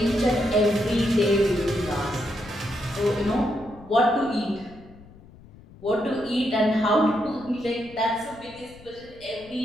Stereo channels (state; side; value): noise; left; rumble, 22 dB below the sound